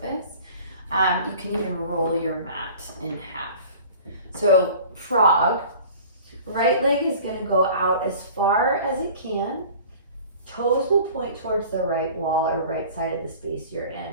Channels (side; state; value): both; inverted; correlation -0.44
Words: you can even roll your mat in half. So frog, right leg is going to go out as far as it can. Toes will point towards the right wall or right side of the space you're